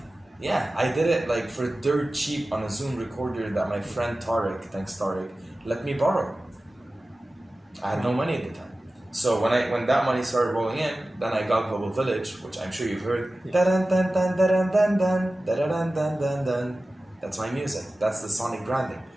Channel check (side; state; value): both; normal; correlation 0.96